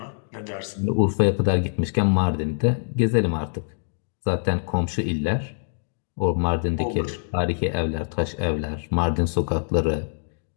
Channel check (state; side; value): silent; right; digital silence